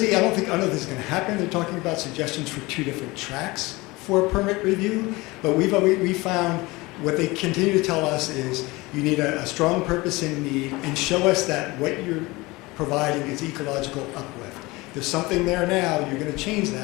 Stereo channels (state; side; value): quieter; right; 22.3 dB